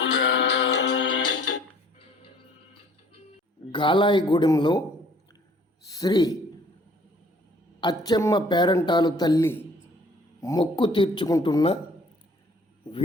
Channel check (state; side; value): normal; both; correlation 0.56